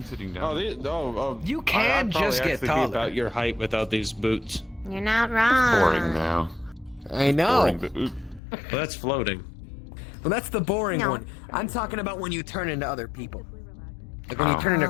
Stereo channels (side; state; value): right; drops out; at 8.4 s